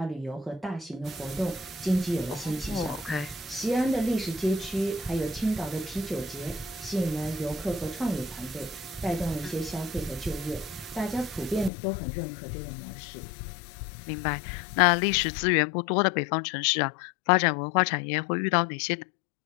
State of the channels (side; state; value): right; drops out; at 11.7 s